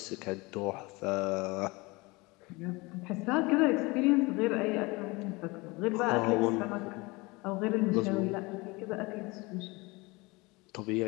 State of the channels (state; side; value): quieter; right; 24.4 dB